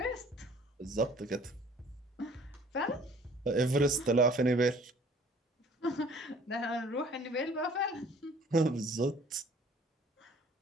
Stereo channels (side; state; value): both; normal; correlation 0.53